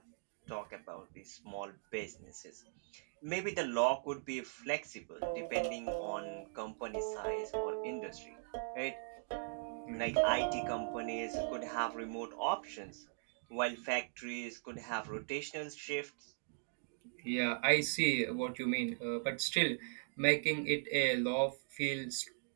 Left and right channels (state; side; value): silent; left; digital silence